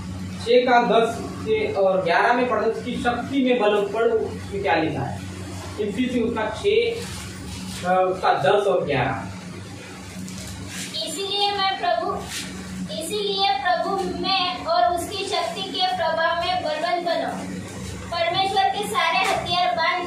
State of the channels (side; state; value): both; identical; correlation 1.00